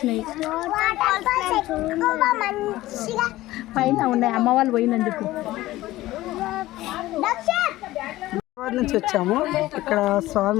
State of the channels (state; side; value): quieter; right; 16.7 dB